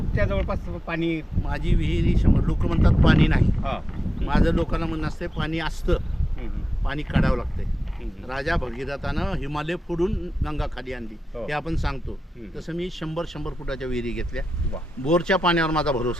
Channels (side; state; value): both; normal; correlation 0.92